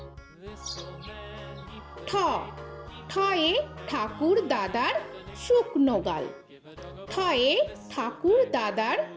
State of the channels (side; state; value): both; identical; correlation 1.00